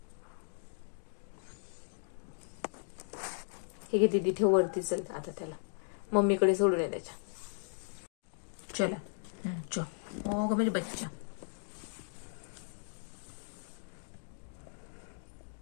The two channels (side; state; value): right; silent; digital silence